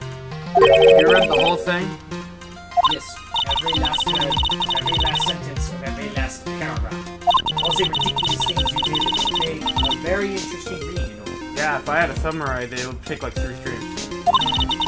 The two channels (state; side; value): identical; both; correlation 1.00